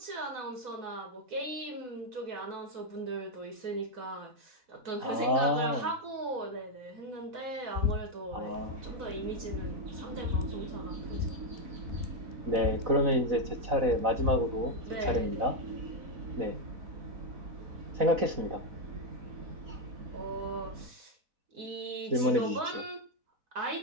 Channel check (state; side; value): late; left; 4.0 ms